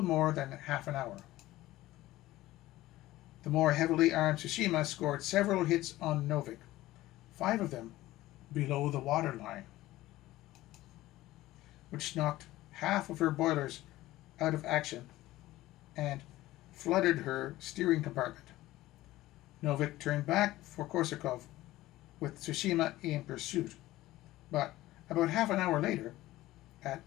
more than half an hour. The more heavily armed Tsushima scored several hits on Novik, 5 of them below the waterline, which knocked half of her boilers out of action and flooded her steering compartment. Novik turned back for Korsakov with Tsushima in pursuit, but about half an hour later,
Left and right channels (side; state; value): right; quieter; 16.6 dB